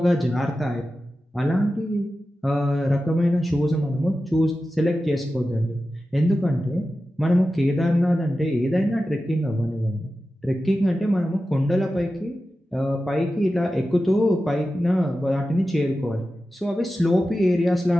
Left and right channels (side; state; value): both; normal; correlation 0.93